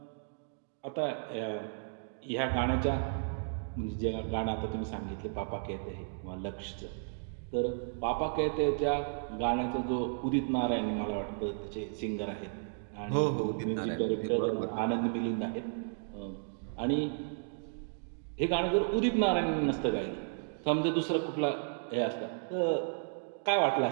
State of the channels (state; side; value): silent; left; digital silence